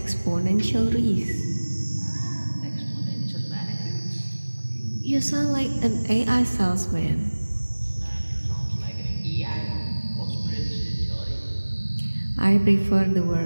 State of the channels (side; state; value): both; inverted; correlation -1.00